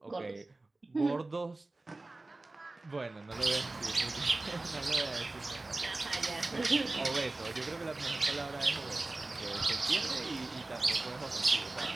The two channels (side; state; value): left; quieter; 3.0 dB